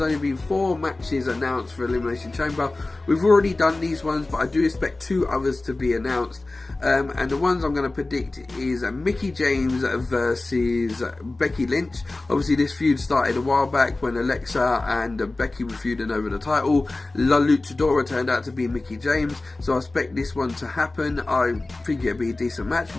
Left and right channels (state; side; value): quieter; right; 3.1 dB